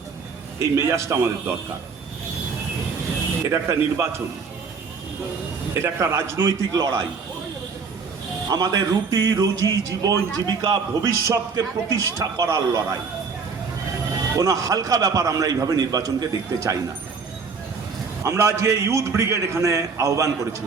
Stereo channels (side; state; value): left; quieter; 5.1 dB